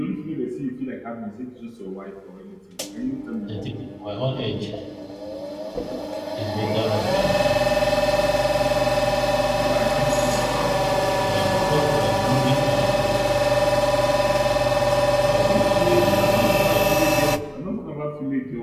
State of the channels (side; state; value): both; identical; correlation 1.00